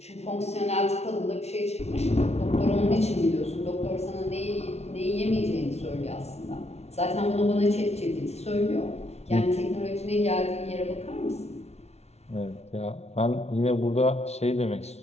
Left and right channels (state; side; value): late; right; 0.31 ms